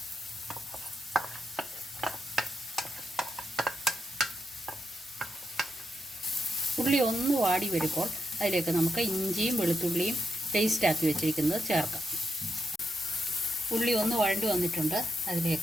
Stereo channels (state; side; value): normal; both; correlation 0.84